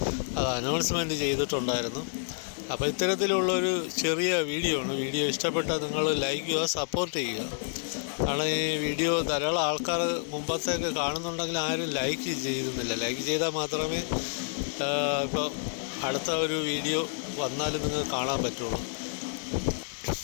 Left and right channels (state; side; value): silent; right; digital silence